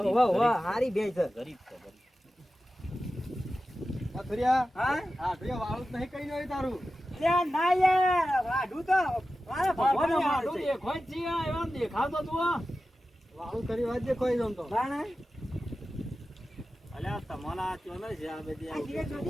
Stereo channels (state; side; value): normal; both; correlation 0.94